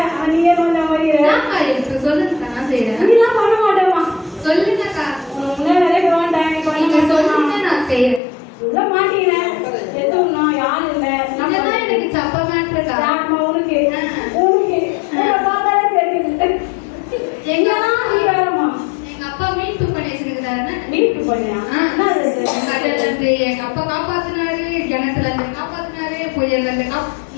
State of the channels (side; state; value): right; drops out; at 8.2 s